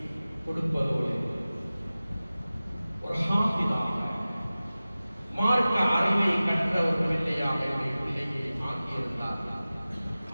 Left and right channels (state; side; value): inverted; both; correlation -0.97